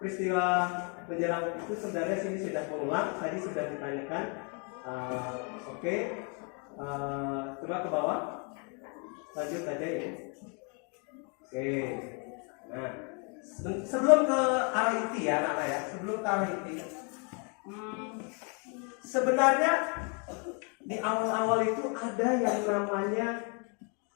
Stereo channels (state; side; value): quieter; right; 37.2 dB